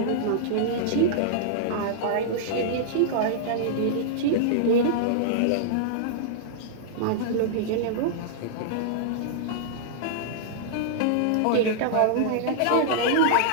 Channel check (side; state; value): both; different; correlation -0.02